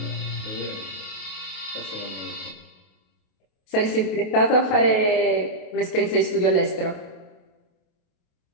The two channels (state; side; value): late; right; 28 ms